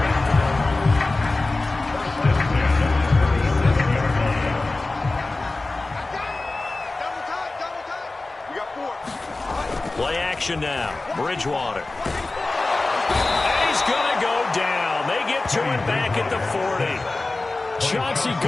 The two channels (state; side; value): quieter; right; 3.2 dB